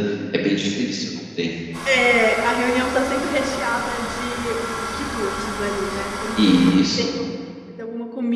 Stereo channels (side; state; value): both; identical; correlation 1.00